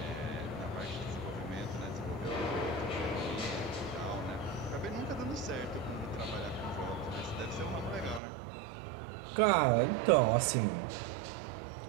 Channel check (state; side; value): drops out; left; at 8.2 s